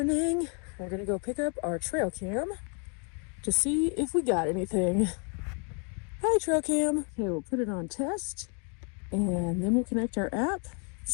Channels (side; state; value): right; quieter; 37.9 dB